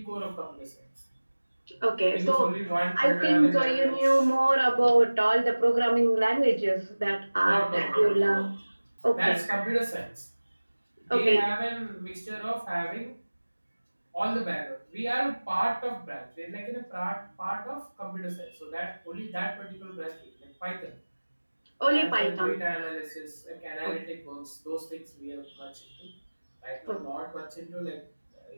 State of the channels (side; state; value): both; inverted; correlation -1.00